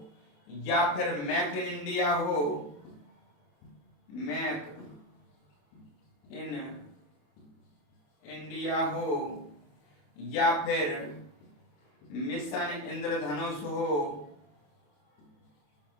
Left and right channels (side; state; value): right; late; 27 ms